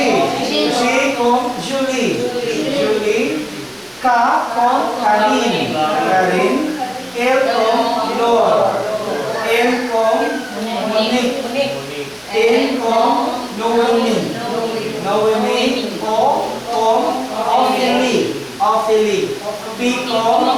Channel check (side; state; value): both; identical; correlation 1.00